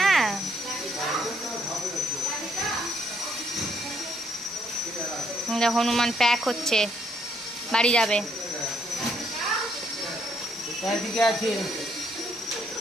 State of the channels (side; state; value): both; normal; correlation 0.71